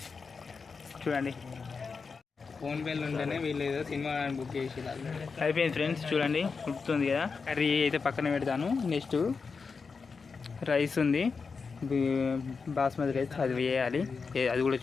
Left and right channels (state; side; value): quieter; right; 5.0 dB